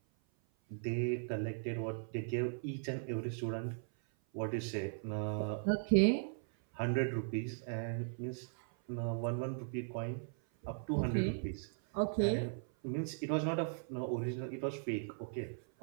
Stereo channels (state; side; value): silent; left; 52 dB below the other